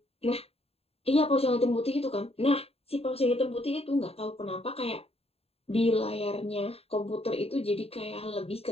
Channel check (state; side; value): late; right; 0.29 ms